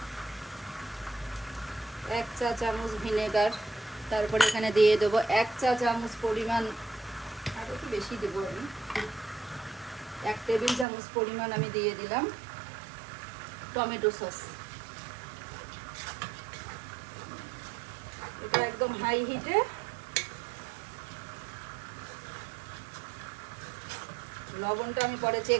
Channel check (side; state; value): left; drops out; at 10.9 s